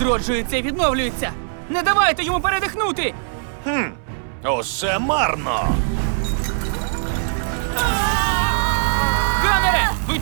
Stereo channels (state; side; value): silent; left; 62 dB below the other